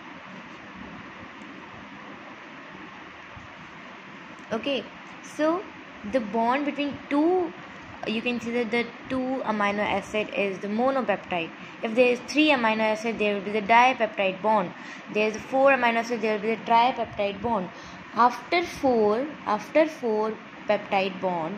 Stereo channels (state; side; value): identical; both; correlation 1.00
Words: Okay, so the bond between two, you can see that the two amino acid is the monopeptide. If there is three amino acid, there will be the dipeptide bond. There is four amino acid, there will be the tripeptide bond. After four peptide